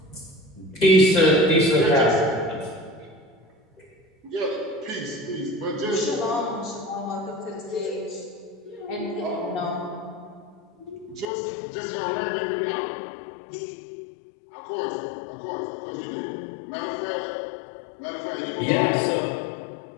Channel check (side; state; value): right; drops out; at 11.3 s